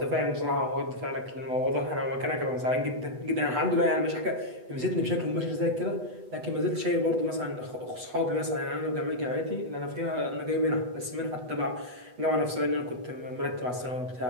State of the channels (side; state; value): left; late; 8.1 ms